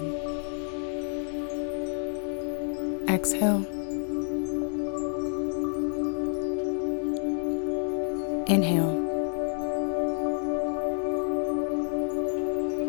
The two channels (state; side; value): silent; right; 55 dB below the other